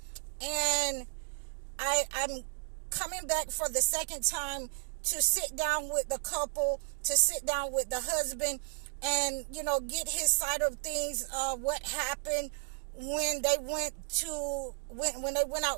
and I'm coming back for the second time to sit down with the couple, to sit down with the husband, and, get his side of things, what happened when they went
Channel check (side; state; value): left; silent; digital silence